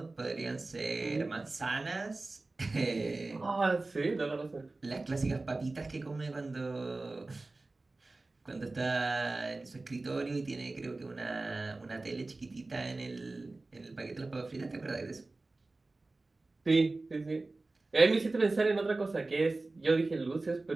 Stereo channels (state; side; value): quieter; left; 3.3 dB